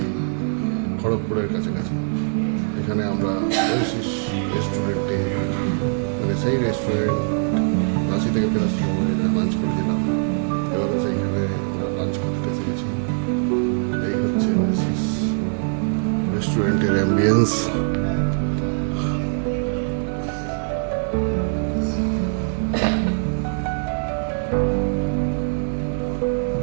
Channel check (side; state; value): left; silent; 64 dB below the other